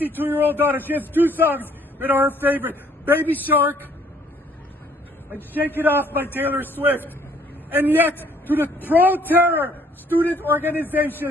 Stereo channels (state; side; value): normal; both; correlation 0.62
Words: 2-year-old daughter. She has 2 songs that are her favorite: Baby Shark and Shake It Off by Taylor Swift. And yet, to the pro-terror student